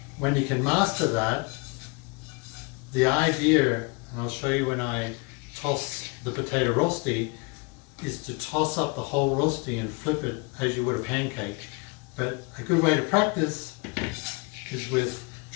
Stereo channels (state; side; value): quieter; right; 29.9 dB